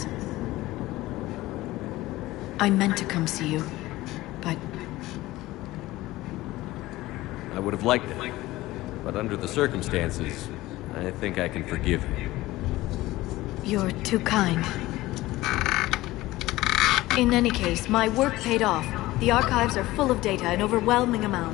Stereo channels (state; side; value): quieter; right; 17.8 dB